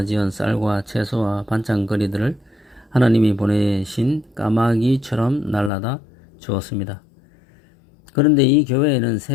쌀과 채소와 반찬거리들을 하나님이 보내신 까마귀처럼 날라다 주었습니다. 그런데 이 교회에는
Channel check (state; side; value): drops out; right; at 5.7 s